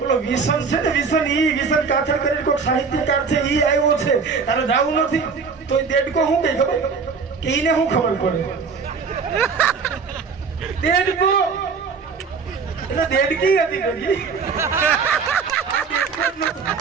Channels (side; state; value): left; quieter; 5.3 dB